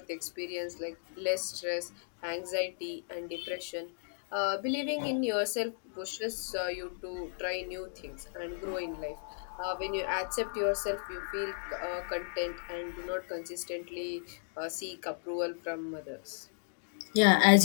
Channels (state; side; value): silent; right; digital silence